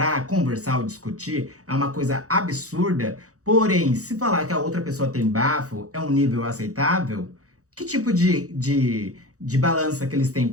conversar ou discutir, é uma coisa absurda. Porém, se falar que a outra pessoa tem bafo, é um nível aceitável, que tipo de balança que eles têm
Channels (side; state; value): left; late; 0.65 ms